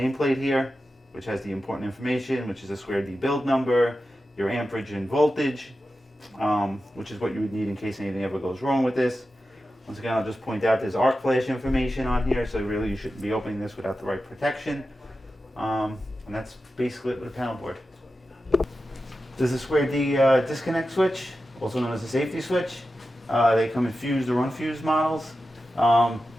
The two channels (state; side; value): normal; both; correlation 0.92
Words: here which has the important information, which is a square D build number, your amperage and voltage, which is what you would need in case anything ever goes wrong with this. Once again, I'll just point out there's arc flash information on here, so really you shouldn't be opening this without the right protection. And that's basically it with a panel board. This is a square D disconnect switch, also known as a safety switch. They come in fused or unfused models. And